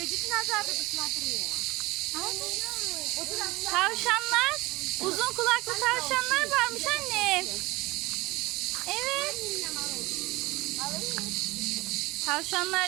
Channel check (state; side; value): quieter; left; 21.6 dB